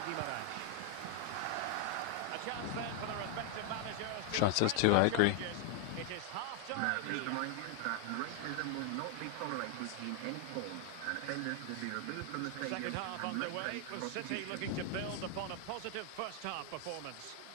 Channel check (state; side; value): different; both; correlation 0.00